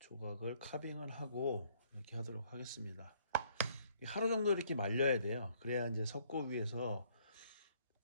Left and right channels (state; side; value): inverted; both; correlation -0.65